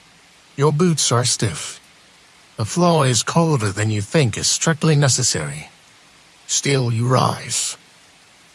Your boots are stiff. The floor is colder than you think is strictly necessary. Still you rise.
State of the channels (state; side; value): identical; both; correlation 1.00